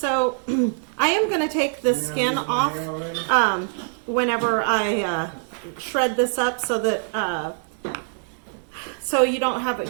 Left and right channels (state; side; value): silent; left; digital silence